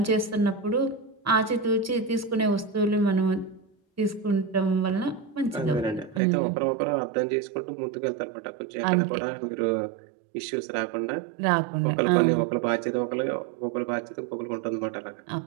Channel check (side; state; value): left; drops out; at 6.2 s